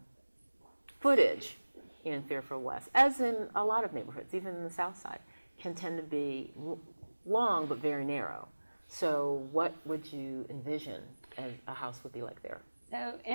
footage in Fairfield West, as in a lot of neighborhoods, even in the South Side, can tend to be long but very narrow. So what would you envision a house would be like there? So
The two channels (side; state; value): both; inverted; correlation -1.00